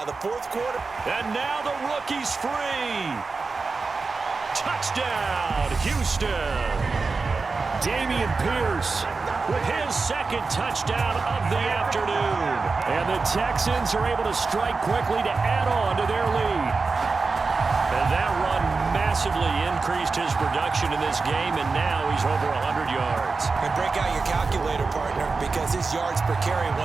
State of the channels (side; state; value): left; quieter; 4.2 dB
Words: the fourth quarter. And now the rookie's free. Touchdown, Houston. Damian Pierce with his second touchdown of the afternoon. And the Texans are able to strike quickly to add on to their lead. And that run massively increased his production in this game, and now he's over 100 yards. And break out your calculator, partner, because his yards per carry